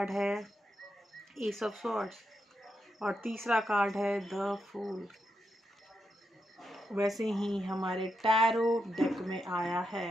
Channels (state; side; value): normal; both; correlation 0.84